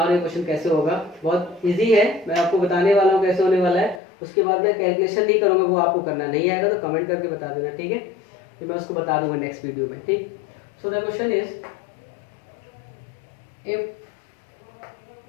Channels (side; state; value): right; drops out; at 4.0 s